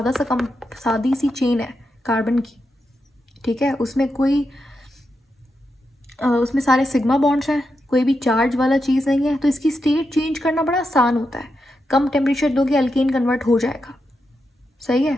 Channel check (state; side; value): normal; both; correlation 0.86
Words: सादी सी चेन है कार्बन की, ठीक है, उसमें उसमें सारे सिग्मा बॉन्ड्स हैं, कोई भी चार्ज वाला चीज़ नहीं है, तो इसकी स्टेट चेंज करना बड़ा आसान होता है। कम टेम्परेचर दोगे अल्केन कन्वर्ट हो जाएगा, सही है।